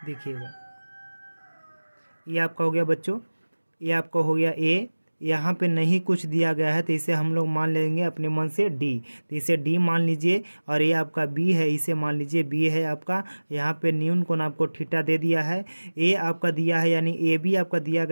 देखिएगा, ये आपका हो गया बच्चों, ये आपका हो गया ए। यहाँ पे नहीं कुछ दिया गया है तो इसे हम लोग मान लेंगे अपने मन से डी। तो इसे डी मान लीजिए। और ये आपका बी है, इसे मान लीजिए बी है आपका। यहाँ पे न्यून कोण आपको थीटा दे दिया है। ए आपका दिया है, यानी ए बी आपका दिया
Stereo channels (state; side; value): inverted; both; correlation -1.00